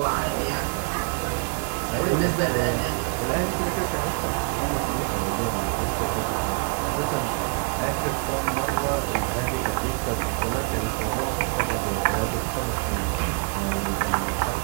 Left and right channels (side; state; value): left; quieter; 35.6 dB